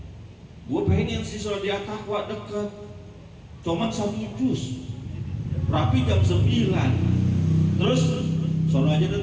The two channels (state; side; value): identical; both; correlation 1.00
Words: Gue pengen sih sholat di At-Taqwa deket. Cuman 1 juz. Rapi jam 9. Terus sono aja